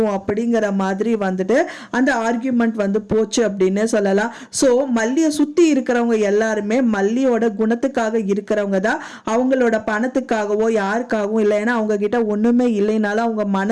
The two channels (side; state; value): both; identical; correlation 1.00